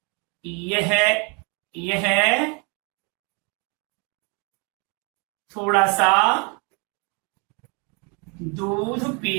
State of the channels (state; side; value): quieter; left; 33.8 dB